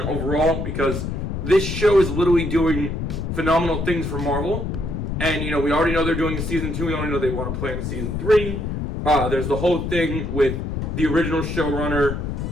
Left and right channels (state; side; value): noise; left; rumble, 3 dB below the sound